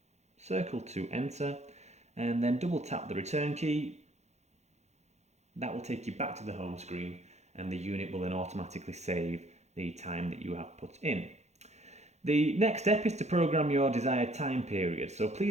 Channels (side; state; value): left; late; 0.32 ms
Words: Circle to enter, and then double tap the return key. That will take you back to the home screen, and the unit will then automatically save the time that you have put in. The next step is to program your desired time period. So